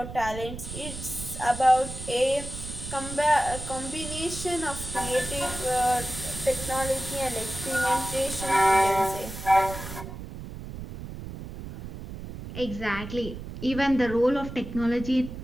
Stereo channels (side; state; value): right; noise; rumble, 10 dB below the sound